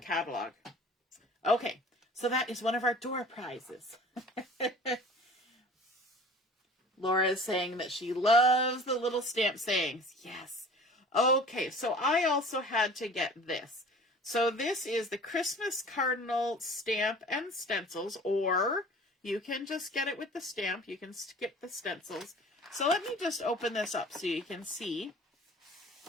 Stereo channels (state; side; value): normal; both; correlation 0.44